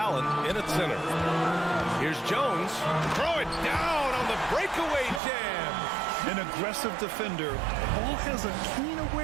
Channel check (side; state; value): left; drops out; at 5.2 s